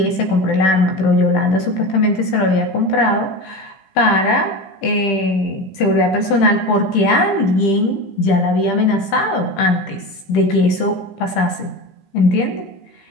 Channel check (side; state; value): right; late; 15 ms